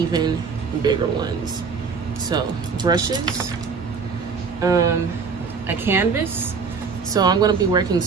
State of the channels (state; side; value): quieter; left; 5.3 dB